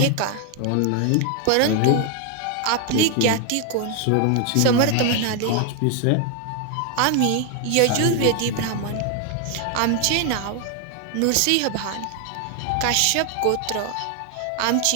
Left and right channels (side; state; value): both; different; correlation 0.01